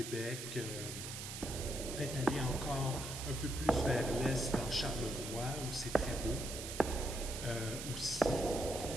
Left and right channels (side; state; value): right; noise; hiss, 7 dB below the sound